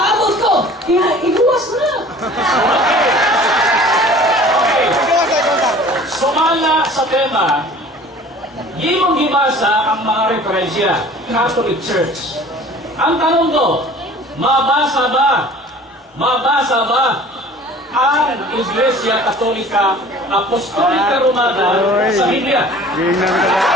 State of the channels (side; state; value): both; normal; correlation 0.46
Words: ko. Kaya iguwas na. Sumala sa tema, imong gibasa ang mga referensya, Catholic Church. Ang tanong ko, mabasa ba ang Iglesia Katolika Apostolika Romana sa Biblia?